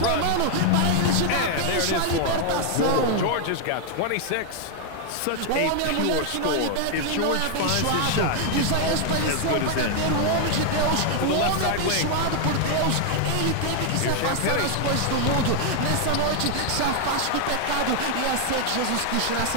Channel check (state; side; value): different; both; correlation 0.00